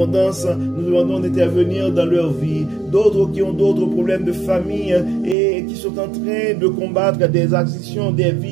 nous demandons d'intervenir dans leur vie. D'autres qui ont d'autres problèmes de famille et qui sont en train de combattre des addictions, des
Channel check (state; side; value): drops out; left; at 5.4 s